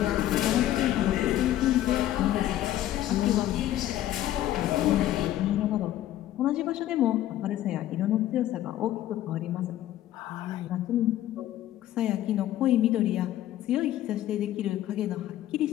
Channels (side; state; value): right; quieter; 13.2 dB